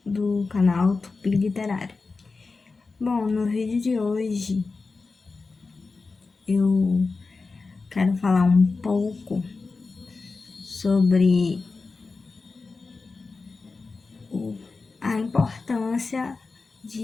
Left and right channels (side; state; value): right; quieter; 4.1 dB